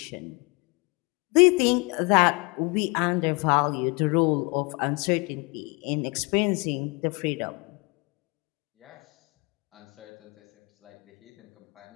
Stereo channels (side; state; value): right; quieter; 29.4 dB